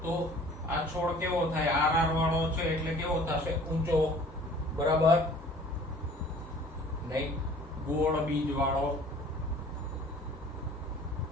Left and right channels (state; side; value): normal; both; correlation 0.50